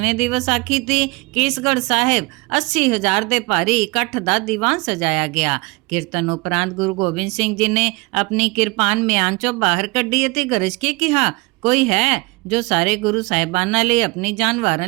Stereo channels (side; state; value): left; quieter; 25.6 dB